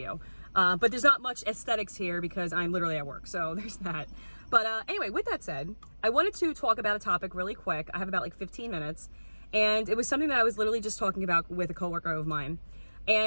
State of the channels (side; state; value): both; inverted; correlation -1.00